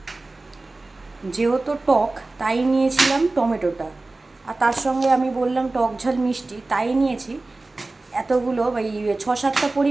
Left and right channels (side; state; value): left; quieter; 3.2 dB